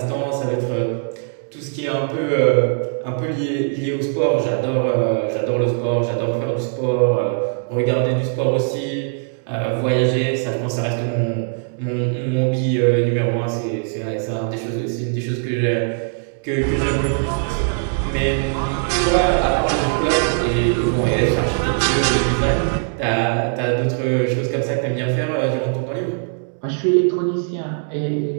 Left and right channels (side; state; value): left; silent; 65 dB below the other